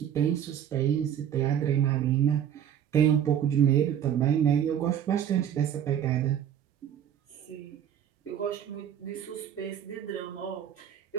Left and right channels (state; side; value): quieter; left; 9.5 dB